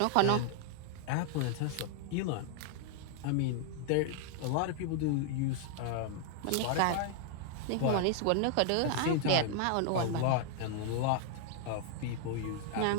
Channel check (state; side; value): different; both; correlation -0.01